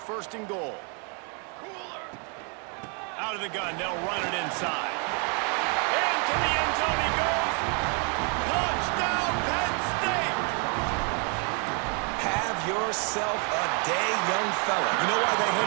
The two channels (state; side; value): quieter; left; 37.1 dB